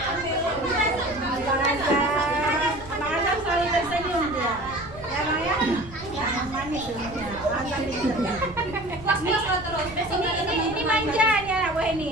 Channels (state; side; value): noise; right; rumble, 17 dB below the sound